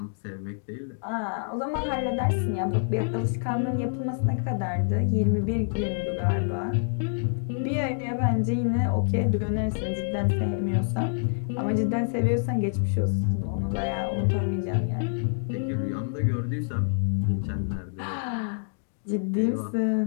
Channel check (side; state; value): right; silent; digital silence